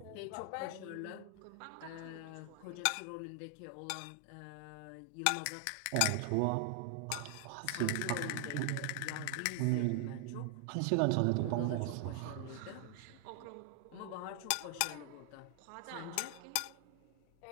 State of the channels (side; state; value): both; different; correlation 0.00